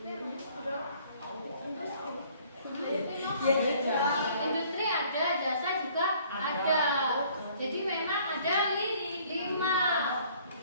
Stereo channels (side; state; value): both; inverted; correlation -0.58